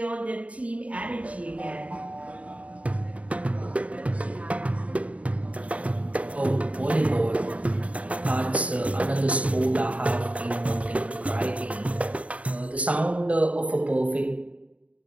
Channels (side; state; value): left; late; 0.066 ms